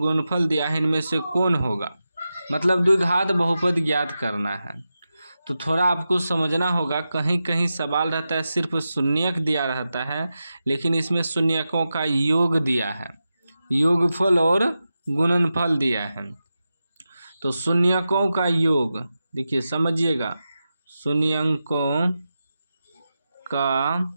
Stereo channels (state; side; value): inverted; both; correlation -0.91